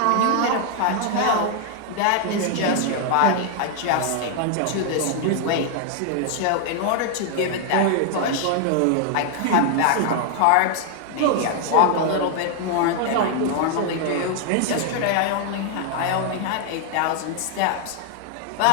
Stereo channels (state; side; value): different; both; correlation 0.00